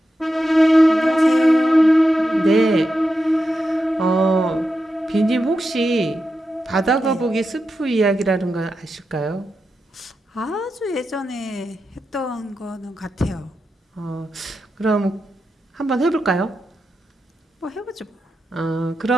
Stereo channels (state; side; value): normal; both; correlation 0.88